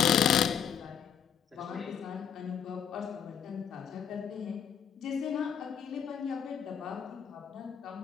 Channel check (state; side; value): quieter; right; 8.0 dB